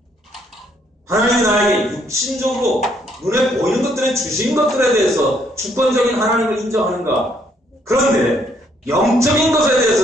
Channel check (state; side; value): normal; both; correlation 0.69